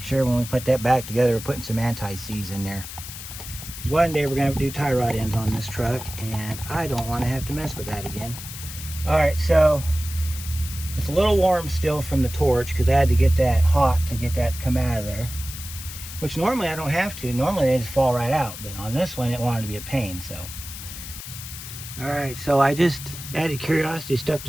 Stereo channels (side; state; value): left; noise; hiss, 11 dB below the sound